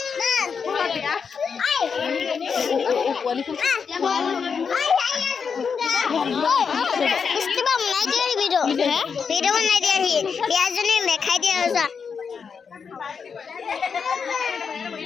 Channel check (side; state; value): right; quieter; 6.1 dB